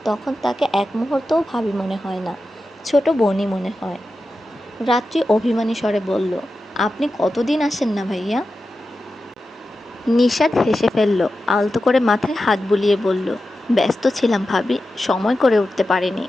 তখন তাকে এক মুহূর্তও ভাবি মনে হয় না, ছোট বোনই মনে হয়। রাত্রি অভিমানী স্বরে বলল, আপনি কতদিন আসেন না ভাইয়া? নিশাদ হেসে ফেলল, আলতো করে মাথায় হাত বুলিয়ে বলল, ব্যস্ত ছিলাম ভাবি, সময় করে উঠতে পারিনি।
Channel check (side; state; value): both; normal; correlation 0.92